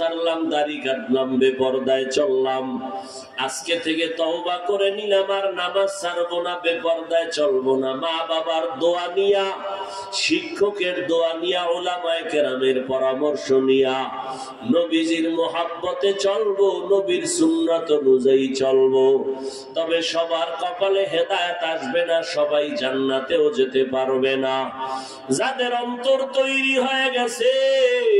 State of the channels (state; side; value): identical; both; correlation 1.00